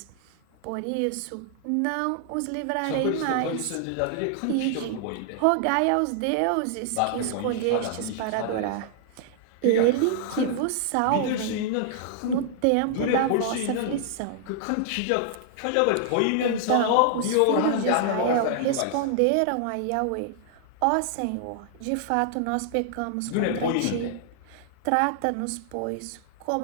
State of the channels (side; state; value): both; different; correlation -0.01